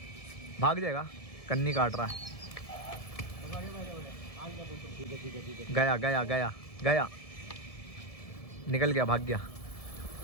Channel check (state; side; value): late; right; 1.7 ms